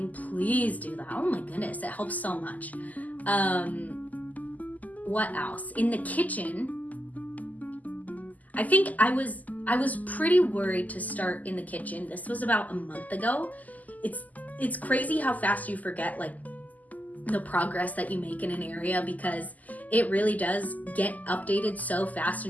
please do that. Oh my goodness, it helps so much. What else? In the kitchen, I think I was pretty worried to start in the kitchen. This was about a month ago. It's crazy how fast you forget like the progress that you make in an area, because it really does get updated so fast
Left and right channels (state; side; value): late; right; 0.079 ms